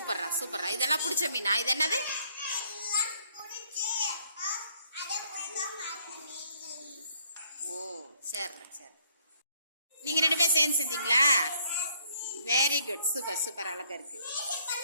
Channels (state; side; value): inverted; both; correlation -0.66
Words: சூப்பர்ரா. இதெல்லாம் பிடிச்ச மீனா? இது என்னது? ஓ, சரி சரி. நீங்க 2 பேரும் சேர்ந்து செஞ்சீங்களா? Very good. Super super. அழகா இருக்கு.